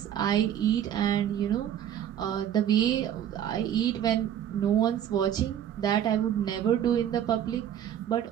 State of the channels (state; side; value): quieter; left; 10.2 dB